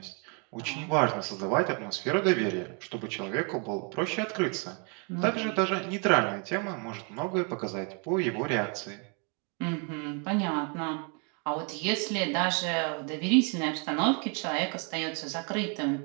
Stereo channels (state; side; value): quieter; left; 35.9 dB